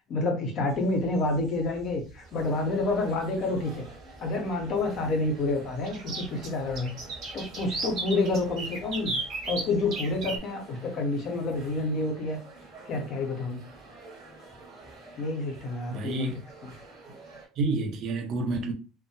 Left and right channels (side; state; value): both; normal; correlation 0.32